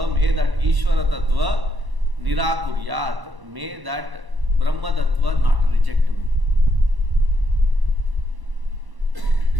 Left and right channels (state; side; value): late; left; 1.0 ms